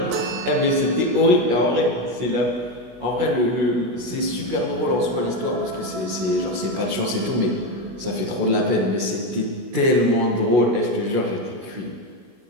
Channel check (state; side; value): late; left; 16 ms